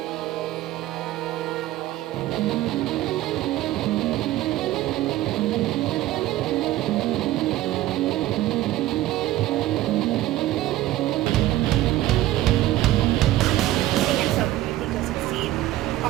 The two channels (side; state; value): left; quieter; 15.1 dB